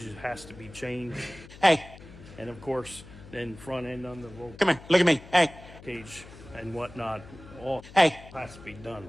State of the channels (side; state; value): left; noise; hum, 18 dB below the sound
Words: it has to be changed. Hey. And of course, then front end on the roll Come here, look at me. Hey. cage and whatnot, all Hey. has to be